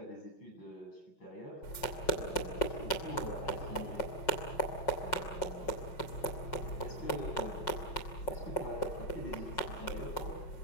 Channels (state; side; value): late; right; 5.5 ms